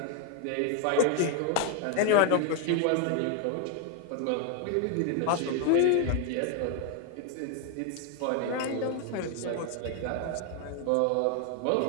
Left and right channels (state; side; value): different; both; correlation 0.00